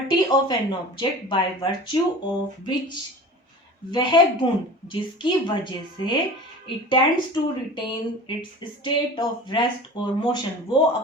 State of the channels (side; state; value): both; normal; correlation 0.38